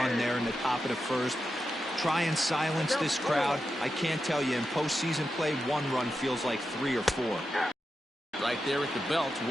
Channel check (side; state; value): both; normal; correlation 0.89